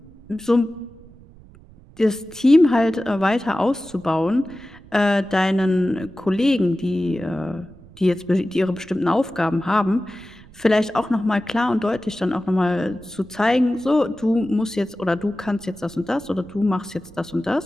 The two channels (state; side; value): noise; right; rumble, 23 dB below the sound